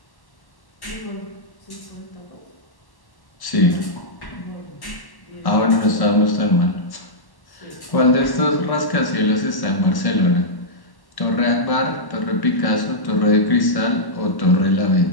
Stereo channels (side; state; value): right; late; 1.1 ms